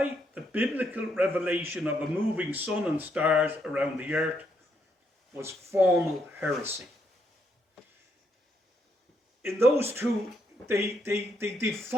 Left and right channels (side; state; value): both; normal; correlation 0.75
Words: the biblical revelation of a moving sun and stars around the earth was formal heresy. In those two, they